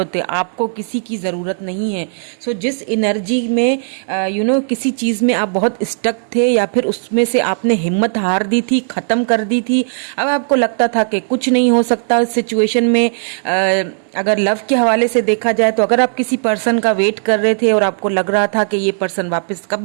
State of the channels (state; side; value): silent; left; digital silence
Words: है, आपको किसी की ज़रूरत नहीं है। सो जिस एनर्जी में किसी चीज़ में आप बहुत स्टक थे या फिर उसमें से आपने हिम्मत हार दी थी, ख़त्म कर दी थी, अब आपको लगता था कि कुछ नहीं हो सकता इस सिचुएशन में। अगर लव के हवाले से देखा जाए तो अगर आप किसी पर्सन का वेट कर रहे थे और आपको लग रहा था कि ये पर्सन वापस